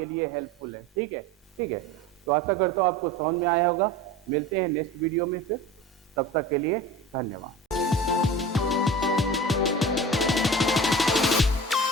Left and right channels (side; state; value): both; normal; correlation 0.35